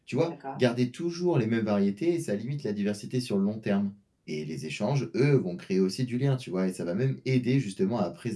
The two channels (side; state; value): both; identical; correlation 1.00